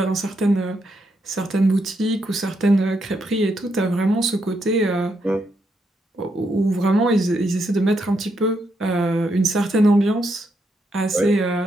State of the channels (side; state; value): both; normal; correlation 0.79